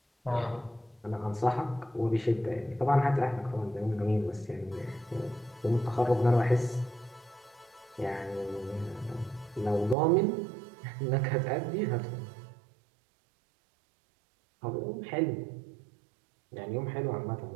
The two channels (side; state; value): left; drops out; at 10.0 s